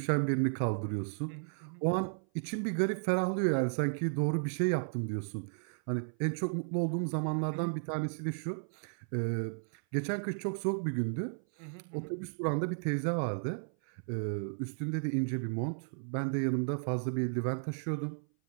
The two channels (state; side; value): silent; left; 55 dB below the other